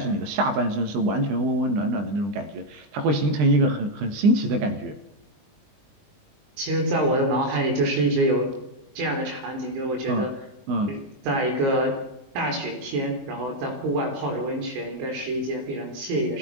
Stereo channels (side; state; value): left; late; 19 ms